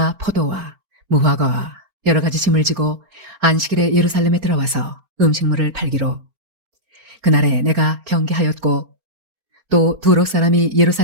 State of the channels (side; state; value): left; late; 4.4 ms